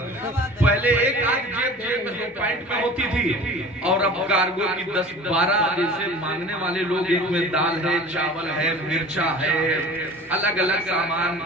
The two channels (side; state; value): both; normal; correlation 0.41